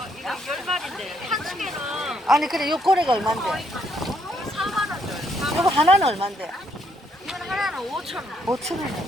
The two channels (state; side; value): normal; both; correlation 0.72